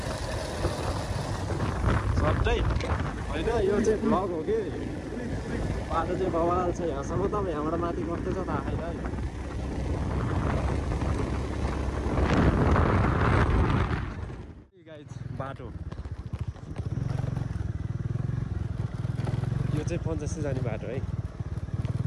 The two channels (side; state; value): both; identical; correlation 1.00